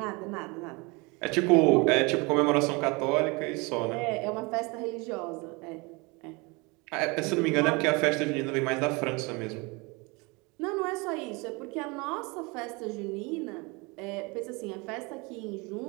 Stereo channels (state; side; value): quieter; left; 27.4 dB